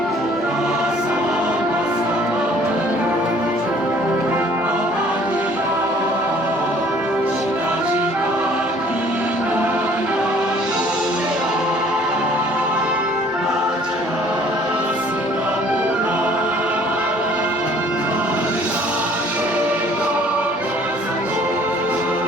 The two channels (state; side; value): normal; both; correlation 0.56